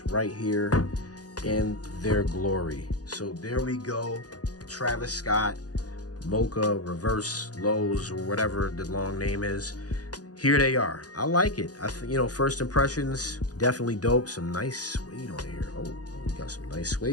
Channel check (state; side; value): late; right; 0.68 ms